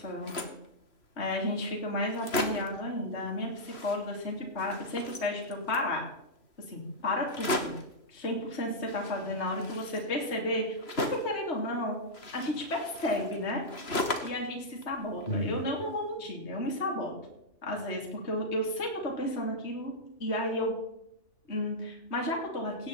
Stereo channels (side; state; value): right; late; 3.0 ms